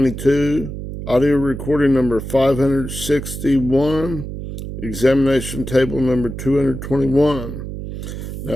audio recording number 561, examination table number 221.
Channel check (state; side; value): noise; right; hum, 8 dB below the sound